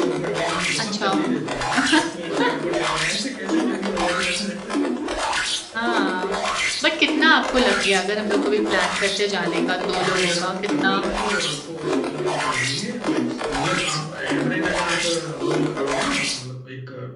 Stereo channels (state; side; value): identical; both; correlation 1.00